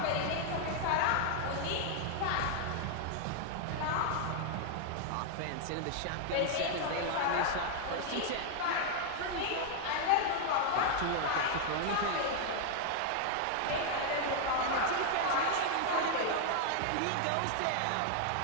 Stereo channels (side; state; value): both; different; correlation 0.00